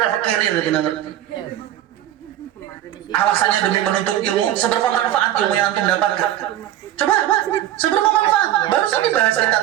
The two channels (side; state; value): left; quieter; 12.7 dB